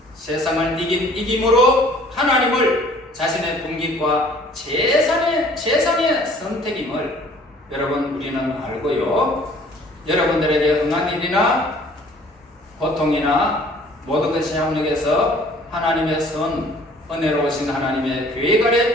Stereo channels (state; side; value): normal; both; correlation 0.54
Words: 세상을 이김으로 하나님을 자신의 분깃과 재산의 선택임을 여러분 우리는 알고요. 여러분들에게 응한 일이나 고통이나 모든 것이 협력해서 하나님의 은혜로우신 하나님의 계획